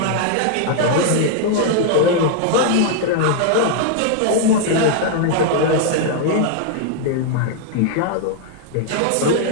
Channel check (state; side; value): different; both; correlation 0.00